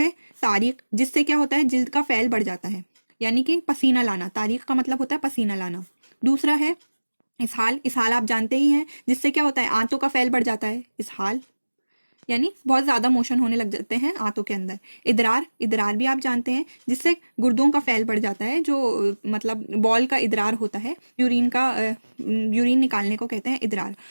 तारीख, जिससे क्या होता है, जिल्द का फैल बढ़ जाता है, यानी कि पसीना लाना। तारीख का मतलब होता है पसीना लाना। दूसरा है इसहाल आप जानते ही हैं, जिससे क्या होता है, आंतों का फैल बढ़ जाता है। इसहाल यानी बहुत ज़्यादा मोशन होने लग जाते हैं आंतों के अंदर। इदरार भी आप जानते हैं, जिससे गुर्दों का फैल बढ़ जाता है, जो मतलब बॉल का इदरार होता है, यूरिन निकालने को कहते हैं इदरार।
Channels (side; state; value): both; inverted; correlation -1.00